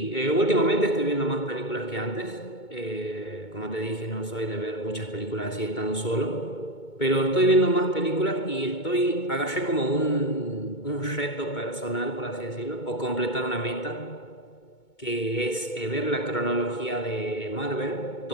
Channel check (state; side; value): late; right; 2.2 ms